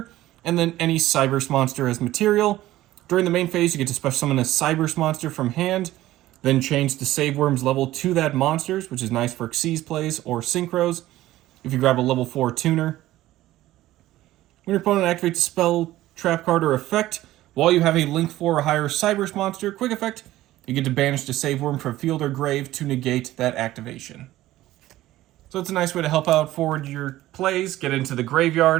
and then any Cyberse monster as material. During the main phase, you get to special summon a Cyberse monster from hand, then change Deceive Worm's level to that monster's, which is nice for Xyz plays or Synchros if you grab a level 4 tuner. When your opponent activates a spell, trap card, or effect, while you have a Link 4 or higher Cyberse monster, quick effect, you get to banish Deceive Worm from field or grave to negate that activation. So it's a nice way to help out forward your plays, get into the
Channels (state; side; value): quieter; left; 15.5 dB